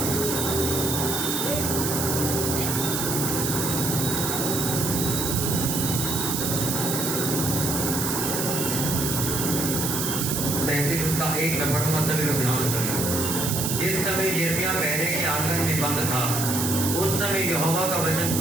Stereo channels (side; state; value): right; noise; hiss, 1 dB below the sound